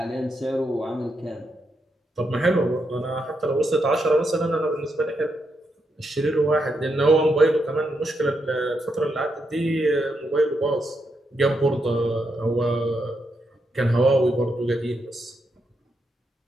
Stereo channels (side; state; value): both; normal; correlation 0.82